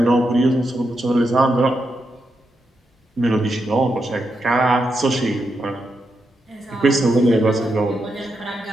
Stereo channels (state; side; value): normal; both; correlation 0.84